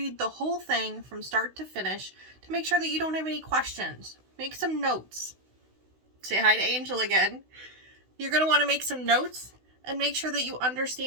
the whole thing from start to finish to make sure that you don't have any questions. Make some notes. Say hi to Angel again. You're going to want to make some notes and make sure that you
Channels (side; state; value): left; late; 16 ms